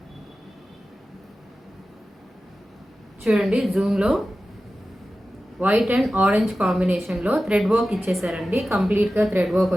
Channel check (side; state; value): both; normal; correlation 0.94